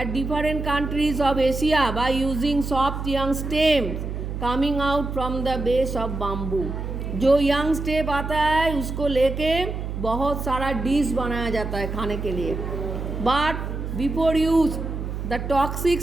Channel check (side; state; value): right; noise; hum, 5 dB below the sound